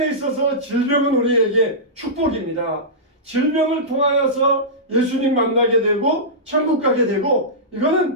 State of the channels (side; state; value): both; normal; correlation -0.16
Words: 있어서 질병은 우리에게 축복입니다. 질병을 통하여서 예수님 만나게 되고 천국 가게 되고